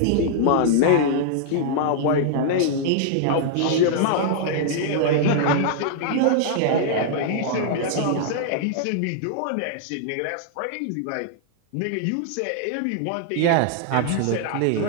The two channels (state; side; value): different; both; correlation -0.01